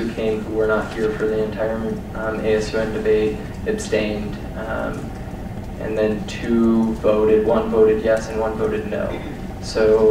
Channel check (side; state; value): both; identical; correlation 1.00